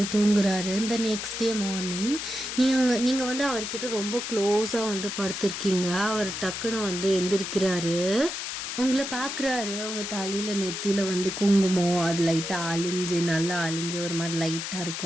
தூங்குறாரு. இந்த நெக்ஸ்ட் டே மார்னிங் நீங்கள் வந்து அவர்கிட்ட ரொம்ப க்ளோஸாக வந்து படுத்திருக்கீங்க. அவர் டக்குன்னு வந்து எந்திரிக்கிறாரு, உங்களை பார்க்குறாரு. உங்கள் தலையில் நெத்தியில் வந்து குங்குமம் அது லைட்டாக அழிஞ்சு நல்லா அழிஞ்சு ஒரு மாதிரி லைட்டாக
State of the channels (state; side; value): noise; left; hiss, 5 dB below the sound